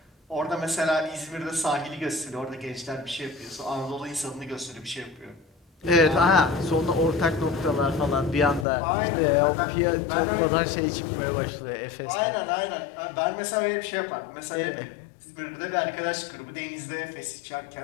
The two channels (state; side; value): drops out; right; at 8.7 s